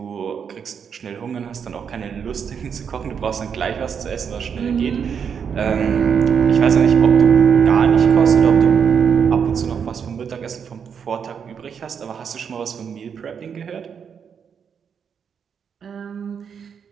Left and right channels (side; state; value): left; quieter; 7.1 dB